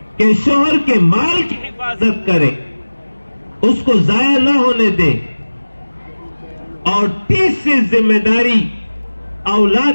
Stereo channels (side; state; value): both; inverted; correlation -1.00